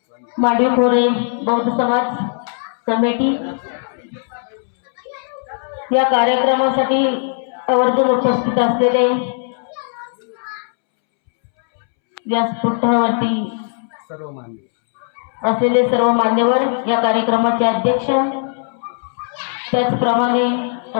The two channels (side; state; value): right; silent; 67 dB below the other